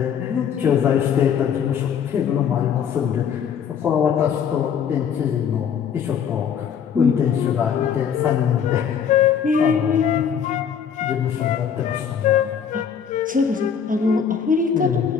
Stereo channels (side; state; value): right; quieter; 7.7 dB